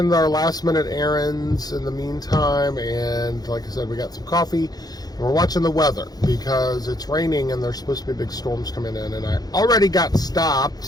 our last minute errands in the meantime, and like I said, we got some coffee and we're watching the weather because it's raining and there's supposed to be big storms coming in, and I already got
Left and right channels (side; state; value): right; late; 0.19 ms